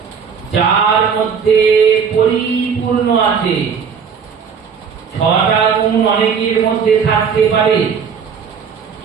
যার মধ্যে পরিপূর্ণ আছে। 6টা গুণ অনেকের মধ্যে থাকতে পারে,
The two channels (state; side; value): quieter; left; 6.5 dB